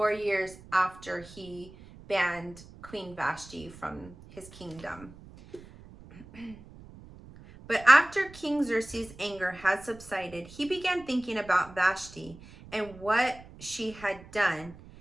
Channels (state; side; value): noise; right; rumble, 19 dB below the sound